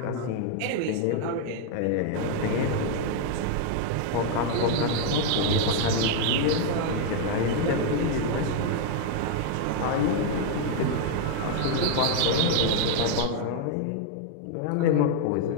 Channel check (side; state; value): both; different; correlation 0.00